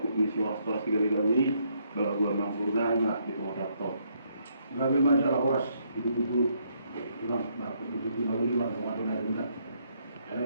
misi soras juga kalau gua mampu nanya di rumah laptop. Gabi masalah horas itu pulang, itu lalu lima sama ada.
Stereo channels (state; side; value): inverted; both; correlation -0.72